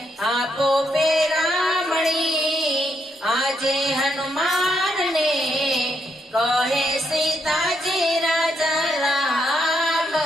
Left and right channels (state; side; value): normal; both; correlation 0.77